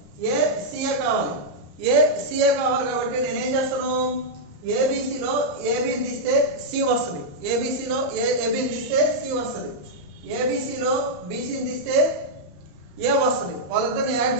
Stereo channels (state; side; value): late; left; 34 ms